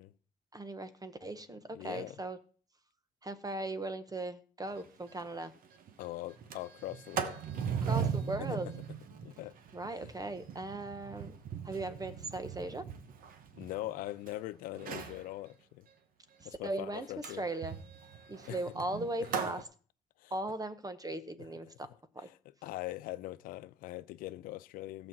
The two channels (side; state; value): both; normal; correlation 0.45